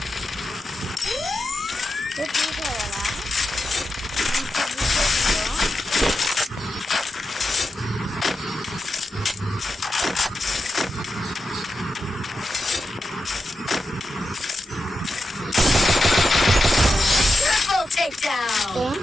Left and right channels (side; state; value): both; normal; correlation 0.89